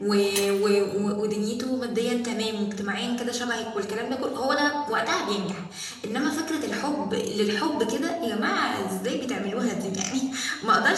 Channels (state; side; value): identical; both; correlation 1.00